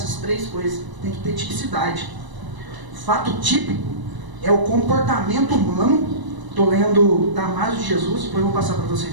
três coisas. Tem que ter tipicidade. Fato típico é o comportamento humano. Estou lendo Damasio de Jesus, depois eu vou passar para vocês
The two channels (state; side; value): late; left; 1.0 ms